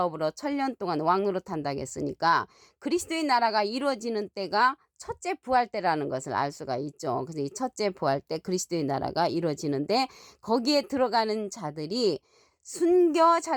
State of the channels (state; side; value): identical; both; correlation 1.00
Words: 천년 동안 왕노릇 한다고 했으니까 그리스도의 나라가 이루어지는 때가 첫째 부활 때라는 것을 알 수가 있죠. 그래서 이 첫째 부활 때 그리스도의 나라가 이루어지는데 거기에 들어가는 자들이